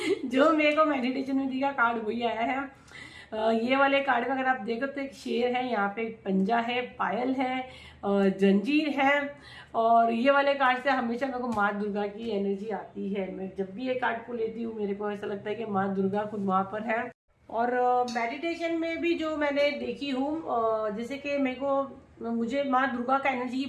जो मेरे को मेडिटेशन में दिया कार्ड वही आया है। ये वाले कार्ड में अगर आप देखो तो एक शेर है, यहाँ पे एक पंजा है, पायल है, जंजीर है। और ये वाले कार्ड से हमेशा मेरे को माँ दुर्गा की एनर्जी आती है। मैं जब भी ये कार्ड को लेती हूँ मेरे को ऐसा लगता है कि माँ दुर्गा खुद वहां पर है। और मेडिटेशन में भी जो मैंने देखी हूँ, जैसे कि मुझे माँ दुर्गा का एनर्जी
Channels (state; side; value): identical; both; correlation 1.00